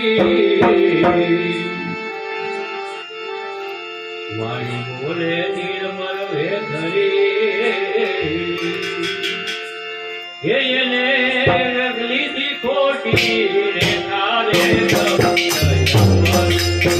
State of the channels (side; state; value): both; identical; correlation 1.00